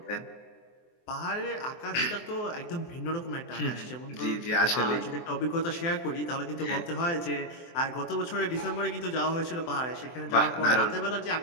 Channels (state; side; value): late; right; 24 ms